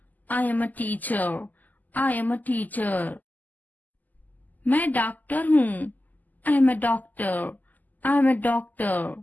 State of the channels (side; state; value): right; late; 0.082 ms